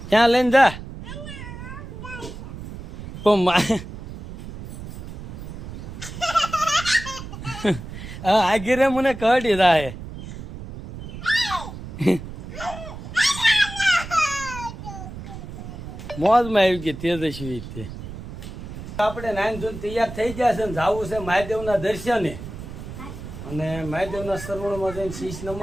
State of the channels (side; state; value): right; noise; rumble, 11 dB below the sound